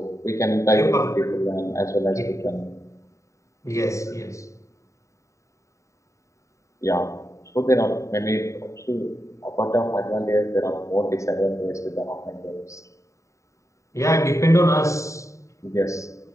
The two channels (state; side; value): late; right; 0.15 ms